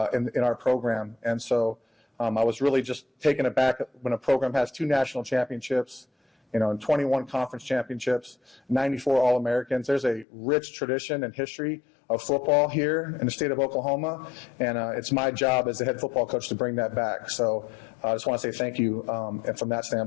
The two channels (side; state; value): right; drops out; at 10.2 s